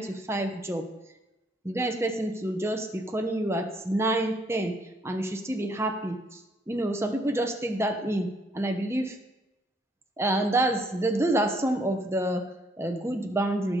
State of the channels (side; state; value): both; normal; correlation 0.68